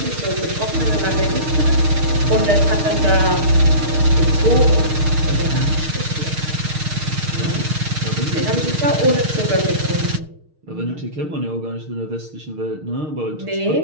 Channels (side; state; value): left; late; 6.5 ms